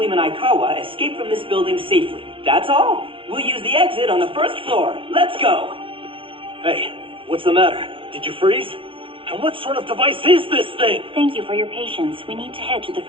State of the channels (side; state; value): left; late; 0.25 ms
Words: Aikawa escape from this building safely. That's all. We'll use the exit on the first floor. Let's go! Hey, what's the matter? Did you freeze? And what sort of device is this thing? Thank you for your patience. We need to head to the